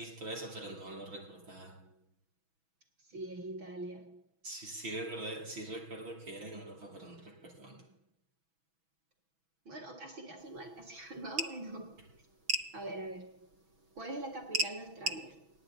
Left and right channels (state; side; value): late; left; 6.1 ms